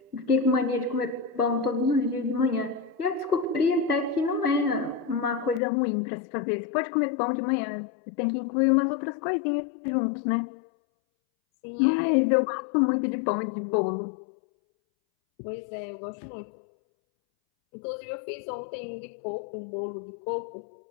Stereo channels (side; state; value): right; drops out; at 5.6 s